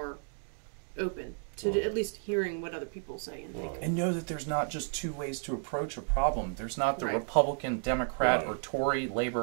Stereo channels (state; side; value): silent; left; 56 dB below the other